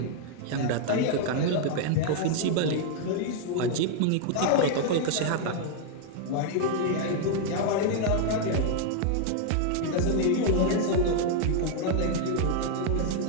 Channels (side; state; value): both; different; correlation 0.00